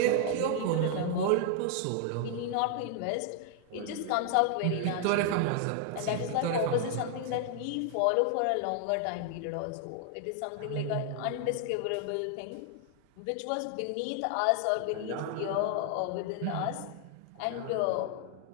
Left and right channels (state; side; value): different; both; correlation 0.00